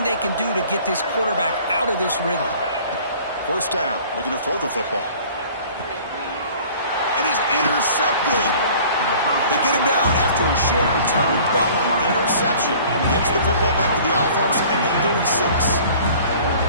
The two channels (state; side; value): inverted; both; correlation -0.49